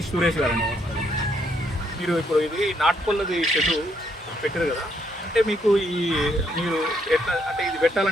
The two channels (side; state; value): both; normal; correlation 0.73